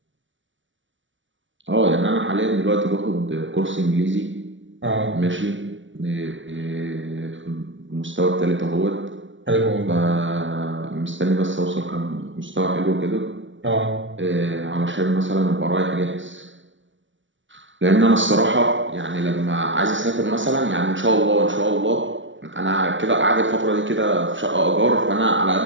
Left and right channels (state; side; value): late; left; 0.56 ms